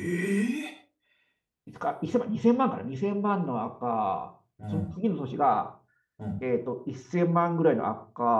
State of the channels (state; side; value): identical; both; correlation 1.00